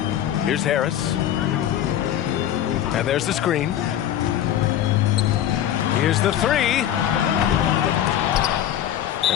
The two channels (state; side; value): quieter; right; 11.1 dB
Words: Here's Harris. And there's the screen. Here's the three.